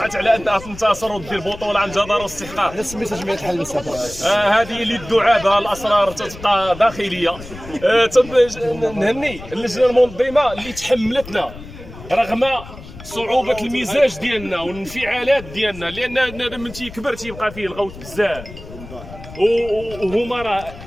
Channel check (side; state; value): left; noise; rumble, 15 dB below the sound